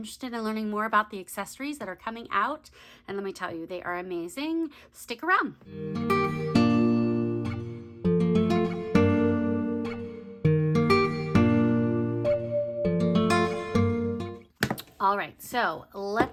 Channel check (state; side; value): identical; both; correlation 1.00